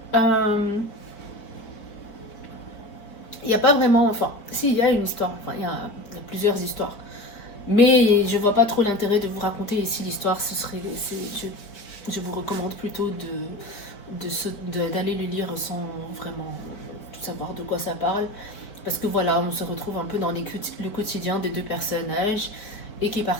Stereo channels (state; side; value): late; right; 4.6 ms